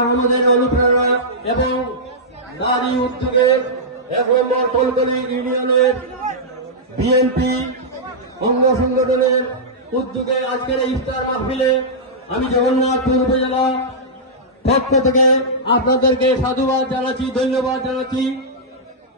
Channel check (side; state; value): both; normal; correlation -0.11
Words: আহমদের অনুপ্রেরণা এবং নারী উদ্যোগের ১ নম্বর কলকলি ইউনিয়নের বিএনপি অঙ্গ সংগঠনের উদ্যোগে আজকের এই ইফতার মাহফিলে আমি জগন্নাথপুর উপজেলা পক্ষ থেকে আপনাদেরকে সাধুবাদ জানাচ্ছি, ধন্যবাদ জানাচ্ছি।